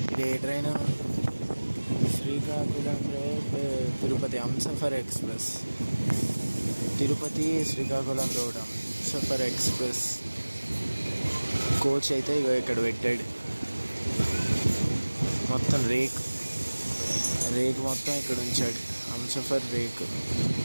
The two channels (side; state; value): both; inverted; correlation -1.00